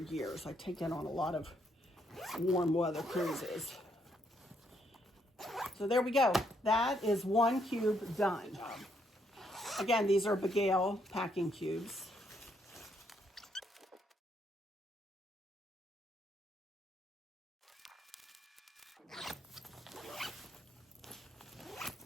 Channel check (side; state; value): both; normal; correlation 0.74